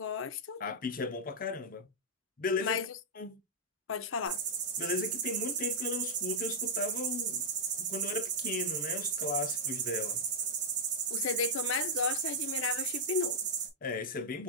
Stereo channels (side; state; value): both; normal; correlation -0.05